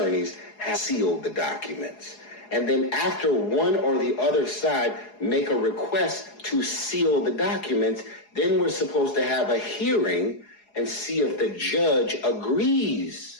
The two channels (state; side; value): late; right; 4.8 ms